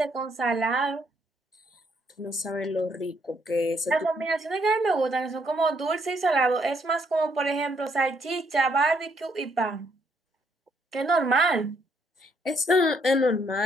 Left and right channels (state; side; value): normal; both; correlation 0.71